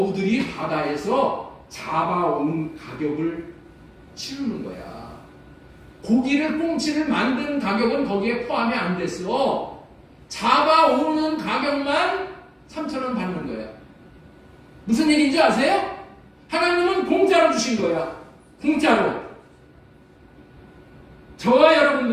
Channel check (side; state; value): both; identical; correlation 1.00